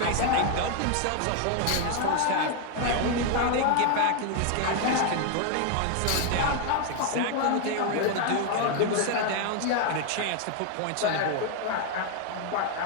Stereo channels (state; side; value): different; both; correlation 0.00